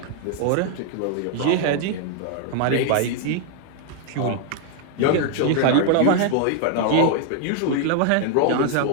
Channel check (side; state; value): both; different; correlation 0.00